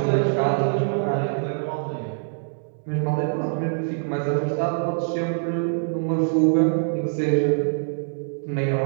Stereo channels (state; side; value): silent; left; digital silence